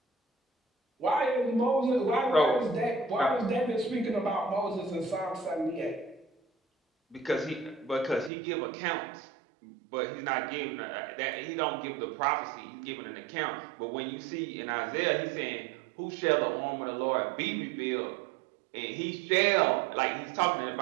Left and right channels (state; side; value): drops out; left; at 8.3 s